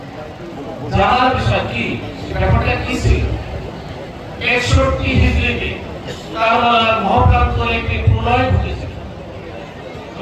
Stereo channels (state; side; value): identical; both; correlation 1.00